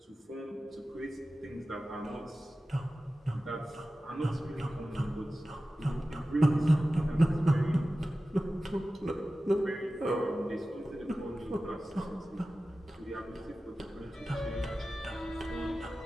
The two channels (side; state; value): both; normal; correlation 0.95